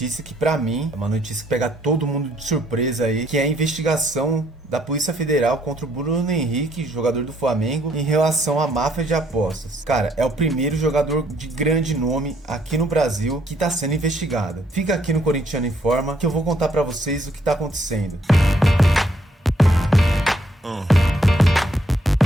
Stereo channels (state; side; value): normal; both; correlation 0.69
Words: que pra mim é uma notícia que pega todo mundo de surpresa aí, que é a investigação da Polícia Federal contra o Bruno Henrique, jogador do Flamengo, em relação à máfia de apostas. Cara, é o primeiro jogador de grande nome aqui no Brasil que tá sendo investigado. Fica aqui no Corintiano Informa que eu vou contar pra vocês o que tá acontecendo.